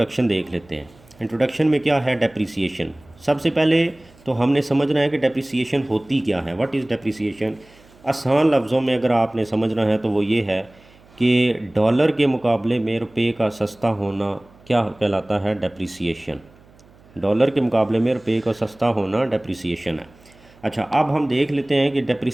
देख लेते हैं। इंट्रोडक्शन में क्या है डेप्रिसिएशन। सबसे पहले तो हमने समझना है कि डेप्रिसिएशन होती क्या है, व्हाट इज़ डेप्रिसिएशन। आसान लफ्ज़ों में अगर आपने समझना है तो वो ये है कि डॉलर के मुकाबले में रुपए का सस्ता होना क्या कहलाता है, डेप्रिसिएशन। डॉलर के मुकाबले में रुपए का सस्ता होना डेप्रिसिएशन है। अच्छा, अब हम देख लेते हैं कि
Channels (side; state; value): right; noise; hum, 27 dB below the sound